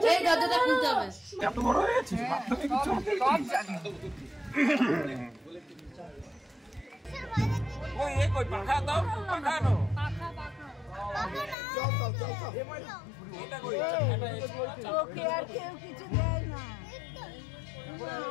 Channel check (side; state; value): right; drops out; at 11.6 s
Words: দরজাটা খুলতে হবে। এত বড় হয়েছে সব জানি। ওই এই কই পাখা দাও, পাখা নাও। এটা কই এটা ওকে আর কেউ কিছু দেয় না।